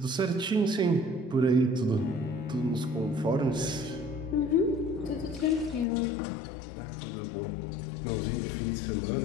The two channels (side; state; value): right; drops out; at 5.9 s